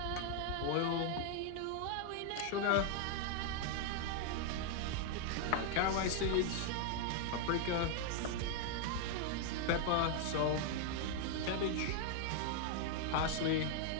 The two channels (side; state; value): both; different; correlation 0.00